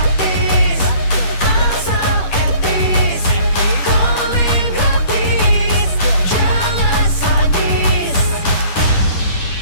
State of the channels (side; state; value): right; late; 10 ms